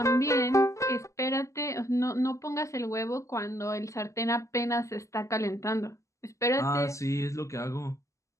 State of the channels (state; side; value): late; right; 0.15 ms